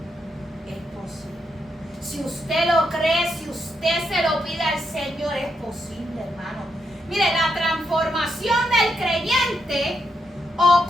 Es posible. Si usted lo cree, si usted se lo pide al Señor, es posible, hermano. Mire, la transformación del creyente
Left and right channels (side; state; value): both; normal; correlation 0.81